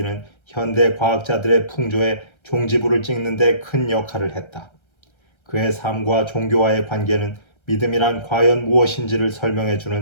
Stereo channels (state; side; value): late; right; 1.3 ms